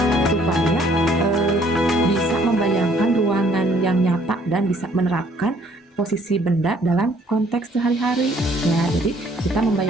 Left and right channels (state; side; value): normal; both; correlation 0.62